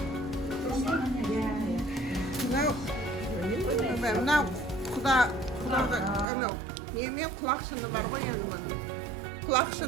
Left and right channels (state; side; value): drops out; left; at 6.2 s